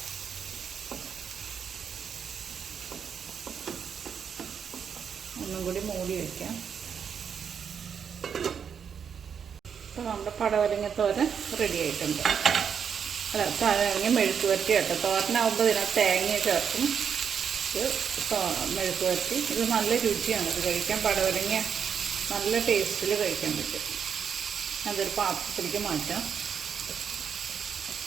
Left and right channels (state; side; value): quieter; left; 7.3 dB